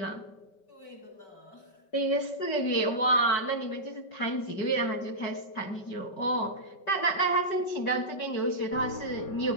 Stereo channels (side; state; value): right; late; 5.2 ms